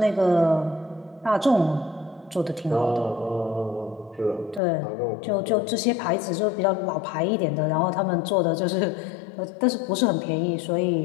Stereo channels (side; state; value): right; drops out; at 4.6 s